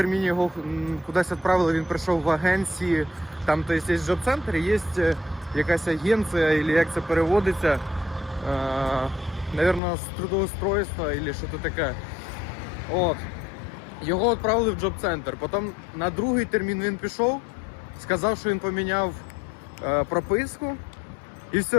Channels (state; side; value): drops out; right; at 9.8 s